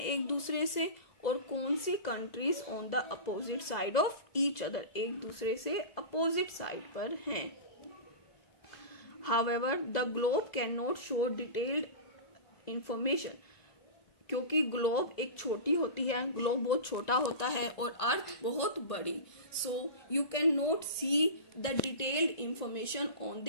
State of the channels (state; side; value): late; right; 1.8 ms